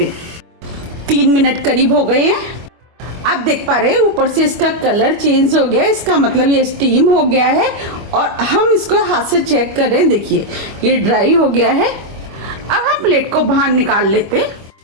हैं। 3 मिनट करीब हो गए हैं। आप देख पा रहे हैं ऊपर से इसका कलर चेंज हो गया है। इसका मतलब ये स्टीम हो गया है। और हम इसको हाथ से चेक कर रहे हैं। देखिए, ये ड्राई हो गया है। अब हम प्लेट को बाहर निकाल लेते हैं।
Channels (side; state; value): left; late; 25 ms